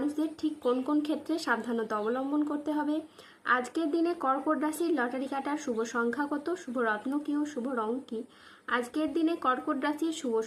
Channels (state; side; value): identical; both; correlation 1.00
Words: ঠিক কোন কোন ক্ষেত্রে সাবধানতা অবলম্বন করতে হবে, আজকের দিনে কর্কট রাশির লটারি কাটার শুভ সংখ্যা কত, শুভ রত্ন কী ও শুভ রং কী, আজকের দিনে কর্কট রাশির শুভ